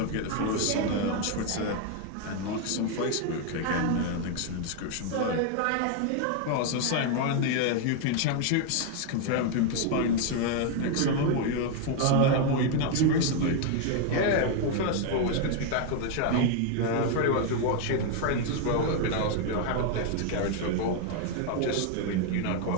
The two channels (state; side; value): different; both; correlation 0.00